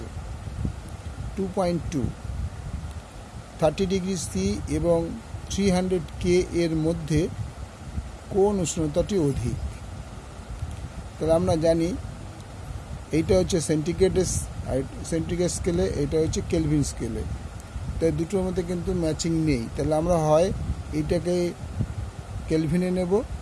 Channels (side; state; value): both; identical; correlation 1.00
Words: 2.2 30°C এবং 300K এর মধ্যে কোন উষ্ণতাটি অধিক? তাহলে আমরা জানি এইটা হচ্ছে সেন্টিগ্রেড স্কেলে, এটা হচ্ছে কেলভিন স্কেলে। তাই দুটোর মধ্যে কিন্তু ম্যাচিং নেই। তাহলে আমরা হয় এইটাকে কেলভিনে নেব,